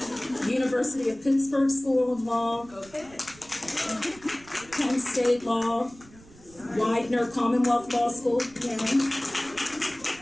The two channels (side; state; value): right; noise; rumble, 23 dB below the sound